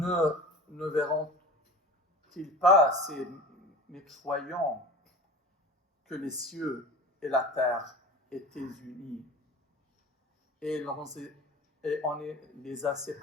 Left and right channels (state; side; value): normal; both; correlation 0.37